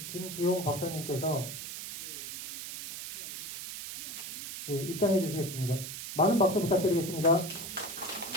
김기용 박사님께서 입장해 주시겠습니다. 많은 박수 부탁드리겠습니다.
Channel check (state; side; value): noise; right; hiss, 8 dB below the sound